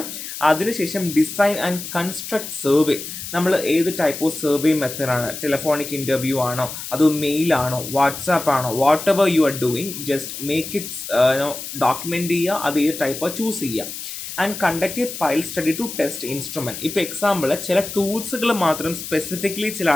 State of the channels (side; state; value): left; noise; hiss, 9 dB below the sound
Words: അതിനുശേഷം ഡിസൈൻ ആൻഡ് കൺസ്ട്രക്ട് സർവേ. നമ്മൾ ഏത് ടൈപ്പ് ഓഫ് സർവേ മെത്തേഡാണ്, ടെലിഫോണിക് ഇൻ്റർവ്യൂ ആണോ, അതോ മെയിൽ ആണോ, വാട്സാപ്പ് ആണോ, whatever you are doing just make its document ചെയ്യുക. അത് ഏത് ടൈപ്പ് ചൂസ് ചെയ്യുക. And conduct a pilot study to test instrument. ഇപ്പോൾ എക്സാമ്പിൾ ചില ടൂൾസുകൾ മാത്രം സ്പെസിഫിക്കലി ചില